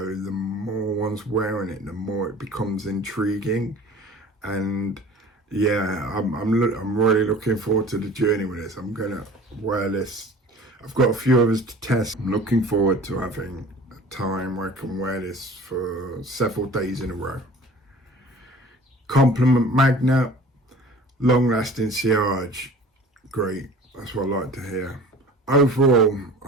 the more one's wearing it, the more it becomes intriguing. And yeah, I'm really looking forward to the journey with this. I'm gonna wear this. I've got a few others to test. I'm looking forward to having a time where I can wear this for several days in a row. Compliment Magnet, long lasting sillage. Great, that's what I like to hear. Overall,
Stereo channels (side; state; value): both; normal; correlation 0.45